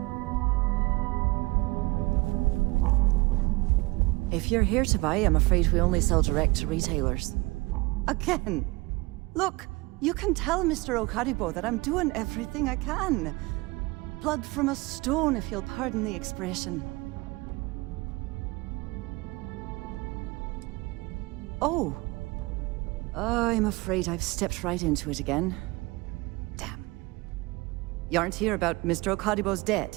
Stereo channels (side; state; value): left; quieter; 23.4 dB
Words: If you're here to buy, I'm afraid we only sell direct to retailers. Again! Look, you can tell Mr. Okaribo that I'm doing everything I can. Blood from a stone, if you'll pardon the expression. Oh. I'm afraid I've stepped right into it again. Damn. You aren't here about Mr. Okaribo's